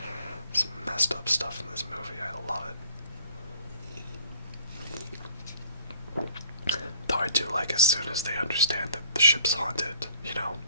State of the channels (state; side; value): inverted; both; correlation -0.57